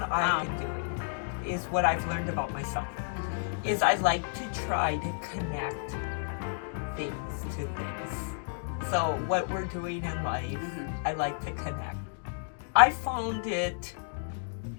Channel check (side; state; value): right; silent; digital silence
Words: I've been doing is what I've learned about myself. Is I like to try to connect things to things. So what we're doing in life, I like to connect. I found it